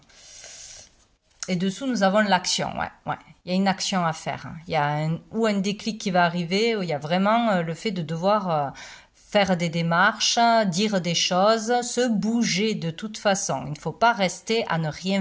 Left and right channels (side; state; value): both; identical; correlation 1.00